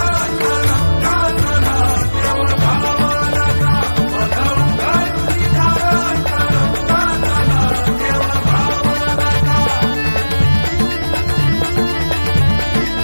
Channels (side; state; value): both; inverted; correlation -1.00